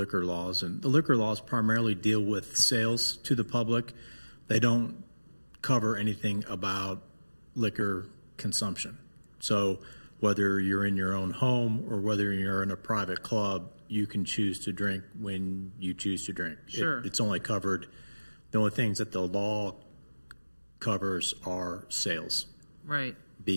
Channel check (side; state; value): both; inverted; correlation -1.00